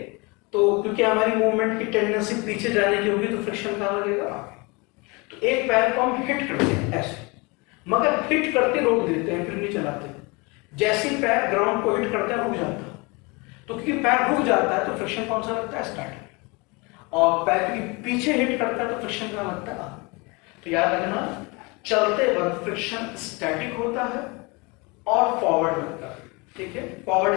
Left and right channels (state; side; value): quieter; right; 27.6 dB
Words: तो क्योंकि हमारी मूवमेंट की टेंडेंसी पीछे जाने की होगी तो फ्रिक्शन कहाँ लगेगा? तो एक पैर को हम हिट करते हैं ऐसे, मगर हिट करते रोक देते हैं, फिर नहीं चलाते। जैसे ही पैर ग्राउंड को हिट करता है रुक जाता है, तो क्योंकि पैर रुक जाता है तो फ्रिक्शन कौन सा लगता है? स्टैटिक। और पैर क्योंकि पीछे हिट करता है तो फ्रिक्शन कहाँ लगता है? तो याद रखना, चलते वक्त फ्रिक्शन स्टैटिक होता है और फॉरवर्ड लगता है, ठीक है।